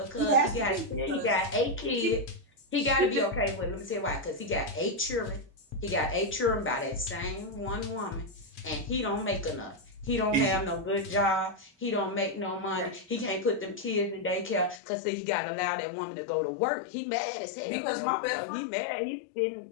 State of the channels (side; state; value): right; drops out; at 14.8 s